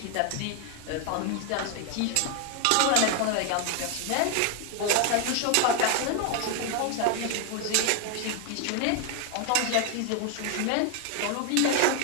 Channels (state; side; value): different; both; correlation 0.01